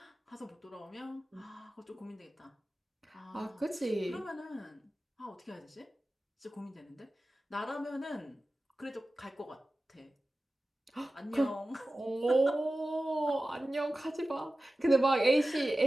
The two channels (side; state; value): both; normal; correlation 0.95